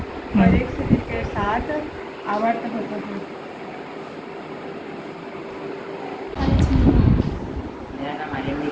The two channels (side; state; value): both; identical; correlation 1.00